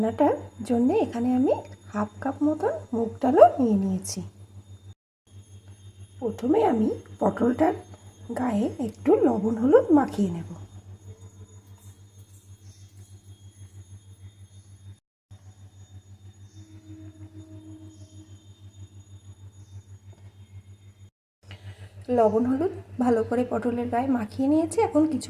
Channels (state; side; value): identical; both; correlation 1.00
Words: জন্য এখানে আমি হাফ কাপ মতন মুগ ডালও নিয়ে নিয়েছি। প্রথমে আমি পটলটার গায়ে একটু লবণ হলুদ মাখিয়ে নেব। লবণ হলুদ ভালো করে পটলের গায়ে মাখিয়ে নিয়েছি। এখন